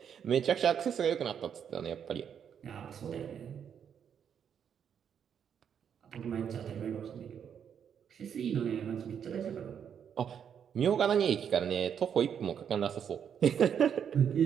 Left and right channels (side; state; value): left; quieter; 8.1 dB